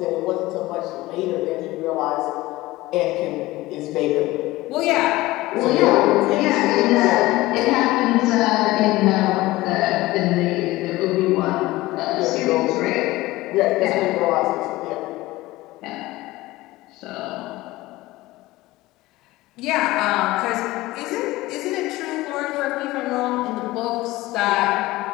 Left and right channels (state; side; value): quieter; right; 18.7 dB